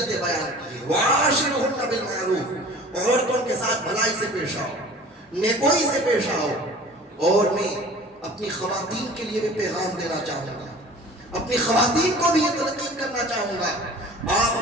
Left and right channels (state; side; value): normal; both; correlation 0.43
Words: بیان کی، وَعَاشِرُهُنَّ بِالْمَعْرُوفِ، عورتوں کے ساتھ بھلائی سے پیش آؤ، نیکوئی سے پیش آؤ۔ اور میں اپنی خواتین کے لیے بھی پیغام دینا چاہوں گا، اپنی خواتین کو بھی یہ تلقین کرنا چاہوں گا، آپ